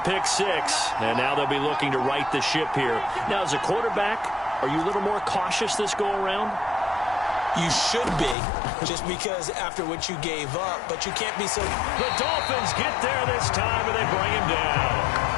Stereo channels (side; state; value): right; drops out; at 8.3 s